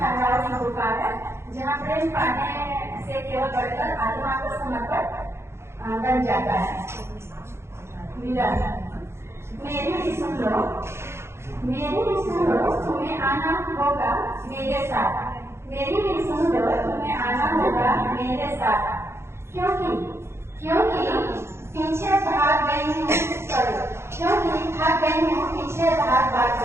की पुकार है जहाँ प्रेम पाने से केवल बढ़कर आत्मा को समर्पण बन जाता है। मेरा मेरी भी सुन लो, मेरी भी सुन लो, तुम्हें आना होगा मेरे साथ। मेरी भी सुन लो, तुम्हें आना होगा मेरे साथ। क्योंकि पीछे भाग गई हूँ, क्योंकि भाग गई हूँ पीछे भाग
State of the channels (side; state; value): left; late; 0.13 ms